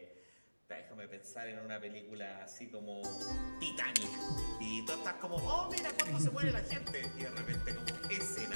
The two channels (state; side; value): inverted; both; correlation -1.00